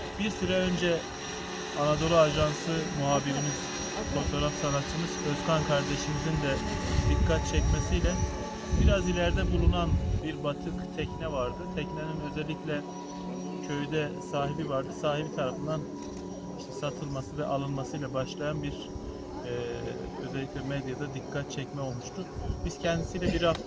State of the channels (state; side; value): identical; both; correlation 1.00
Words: Bir süre önce Anadolu Ajansı muhabirimiz, fotoğraf sanatçımız Özkan kardeşimizin de dikkat çekmesiyle biraz ileride bulunan bir batık tekne vardı. Teknenin özellikle köyde sahibi vardı. Sahibi tarafından satılması ve alınmasıyla başlayan bir özellikle medyada dikkat çekme olmuştu. Biz kendisiyle bir